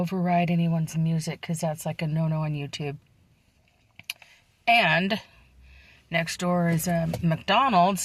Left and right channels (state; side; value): identical; both; correlation 1.00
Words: anyone's music because that's like a no-no on YouTube. And next door is a